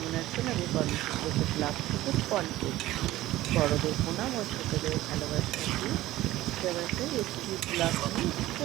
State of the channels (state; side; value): quieter; left; 16.1 dB